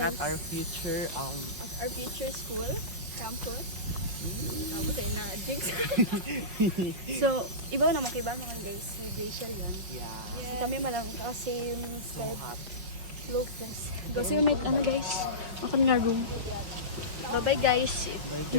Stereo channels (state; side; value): late; left; 5.4 ms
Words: at guys? our future At our future school campus. Tapos ay na jinx. So, iba naman kay mga guys, si Rachel yun. yeah. Kami malang kasi So hot. slow press. Kasi may ano guys, ako nga room. Bye-bye guys. guys.